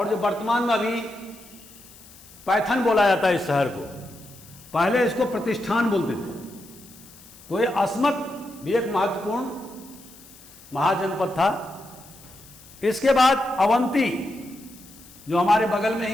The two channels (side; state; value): left; noise; hiss, 22 dB below the sound